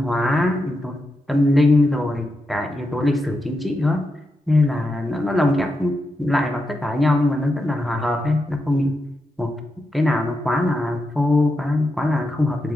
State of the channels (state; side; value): normal; both; correlation 0.86